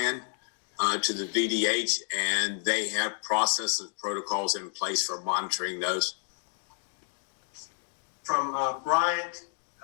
to the VDH, and they have processes and protocols in place for monitoring those. From Bryant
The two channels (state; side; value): silent; right; digital silence